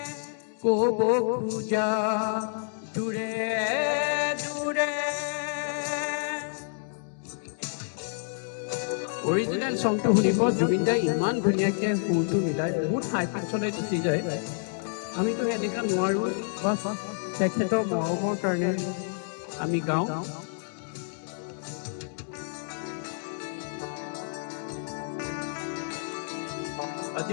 ক'ব খোজা। দূৰে দূৰে অৰিজিনেল চংটো শুনিব। জুবিনদাই ইমান ধুনীয়াকৈ সুৰটো মিলাই বহুত হাই পিচলৈ গুচি যায়। আমিতো এনেকুৱা নোৱাৰোঁ, বাছ তেখেতৰ মৰমৰ কাৰণে আমি গাওঁ। আজি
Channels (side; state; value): right; silent; digital silence